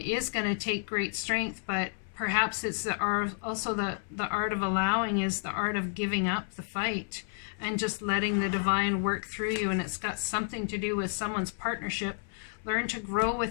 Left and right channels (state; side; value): silent; right; 57 dB below the other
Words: is going to take great strength, but perhaps it's the art, also the art of allowing is the art of giving up the fight and just letting the divine work through you. And it's got something to do with someone's partnership. Learn to grow